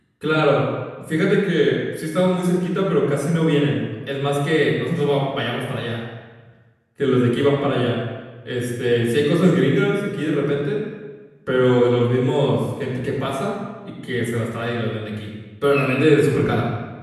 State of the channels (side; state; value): both; identical; correlation 1.00